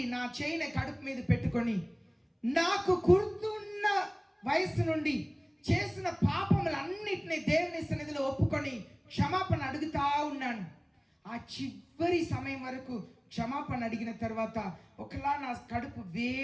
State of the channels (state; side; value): identical; both; correlation 1.00